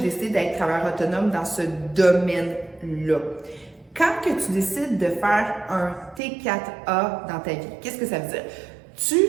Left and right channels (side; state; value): left; drops out; at 6.2 s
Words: d'être travailleur autonome dans ce domaine-là. Quand que tu décides de faire un T4A dans ta vie, qu'est-ce que ça veut dire?